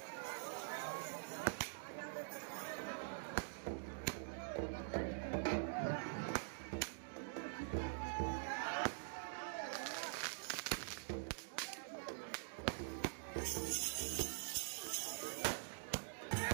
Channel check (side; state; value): left; silent; digital silence